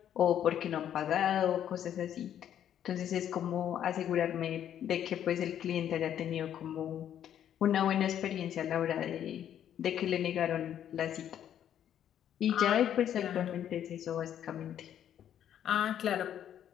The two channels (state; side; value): quieter; right; 10.2 dB